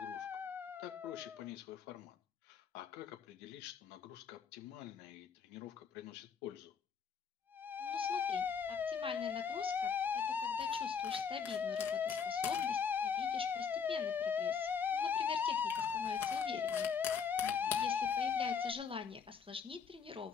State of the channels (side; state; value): right; quieter; 6.4 dB